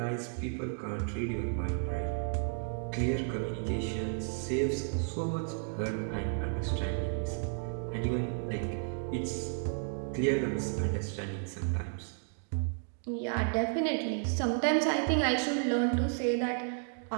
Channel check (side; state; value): left; silent; 56 dB below the other